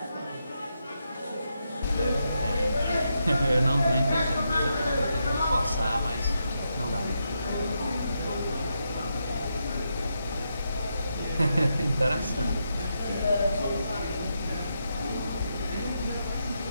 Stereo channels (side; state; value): both; inverted; correlation -0.83